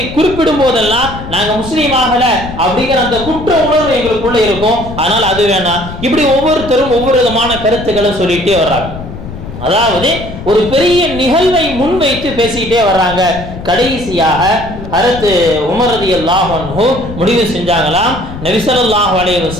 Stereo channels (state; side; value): noise; left; rumble, 11 dB below the sound